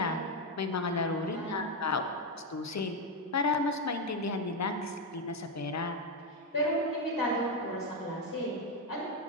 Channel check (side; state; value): both; normal; correlation 0.06